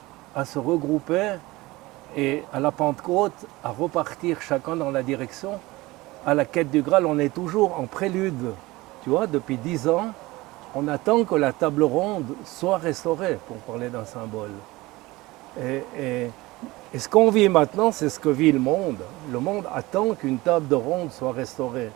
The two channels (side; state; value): left; quieter; 20.4 dB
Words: à se regrouper et à la Pentecôte à repartir chacun dans la direction. À la quête du Graal, on est toujours en prélude. Tu vois, depuis 10 ans, on attend que la table ronde soit restaurée, pour parler d'un symbole. Et ce qu'on vit maintenant, c'est ce que vit le monde. Le monde attend qu'une table de ronde soit restaurée